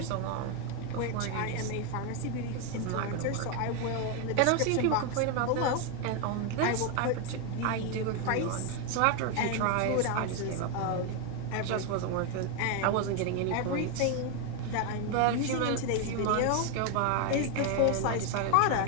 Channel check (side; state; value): both; different; correlation 0.02